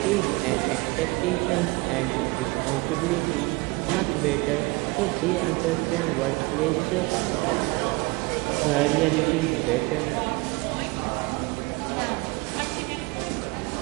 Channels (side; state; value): left; quieter; 24.9 dB